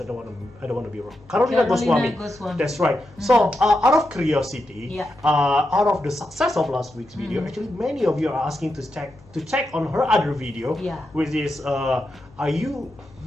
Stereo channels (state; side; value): noise; left; hum, 26 dB below the sound